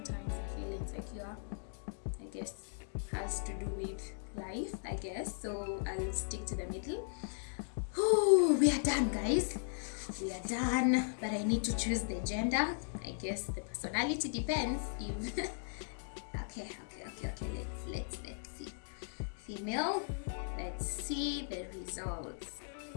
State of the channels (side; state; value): right; silent; digital silence